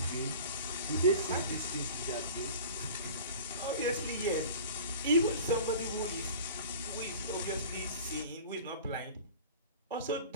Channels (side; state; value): both; inverted; correlation -0.40